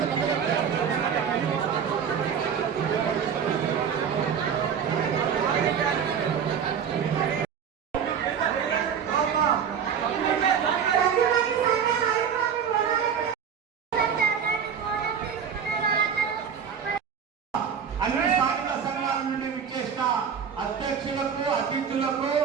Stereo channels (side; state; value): left; quieter; 7.5 dB